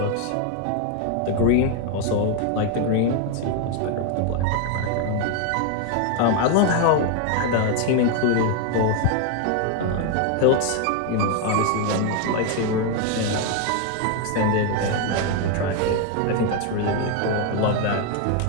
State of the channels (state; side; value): different; both; correlation 0.01